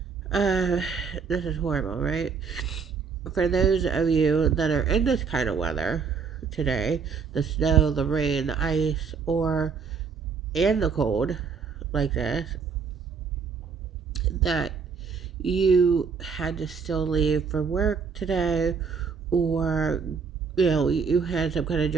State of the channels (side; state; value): left; quieter; 5.7 dB